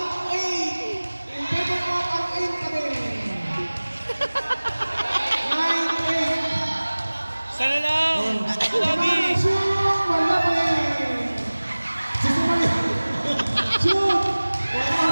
Sana lang! Lagi!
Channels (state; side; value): inverted; both; correlation -1.00